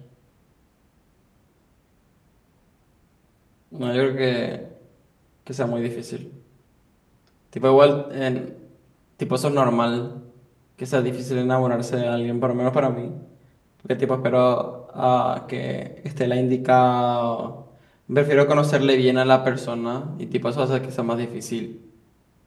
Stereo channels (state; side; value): identical; both; correlation 1.00